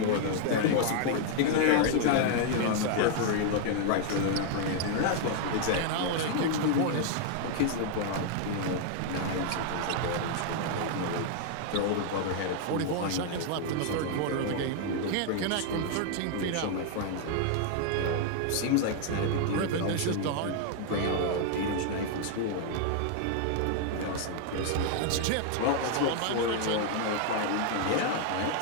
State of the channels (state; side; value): different; both; correlation 0.00